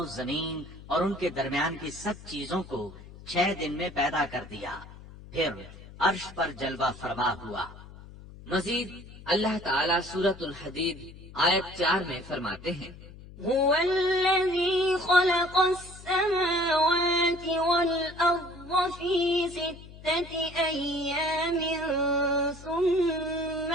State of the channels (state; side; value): noise; left; hum, 17 dB below the sound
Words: زمین اور ان کے درمیان کی سب چیزوں کو 6 دن میں پیدا کر دیا، پھر عرش پر جلوہ فرما ہوا۔ مزید اللہ تعالیٰ سورۃ الحدید آیت 4 میں فرماتے ہیں هو الذي خلق السماوات والأرض في 6 أيام ثم